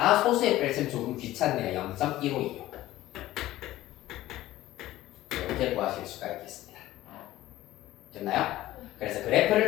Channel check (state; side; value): quieter; right; 15.6 dB